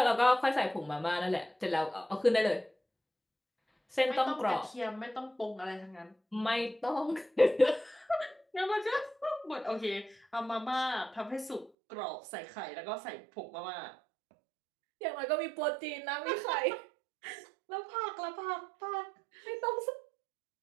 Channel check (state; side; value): drops out; left; at 11.7 s